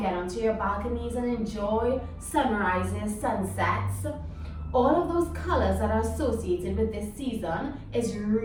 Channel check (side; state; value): both; identical; correlation 1.00